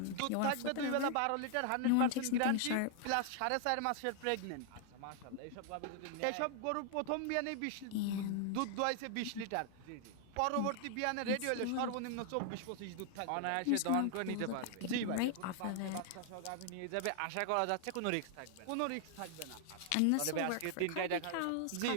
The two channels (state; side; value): different; both; correlation 0.00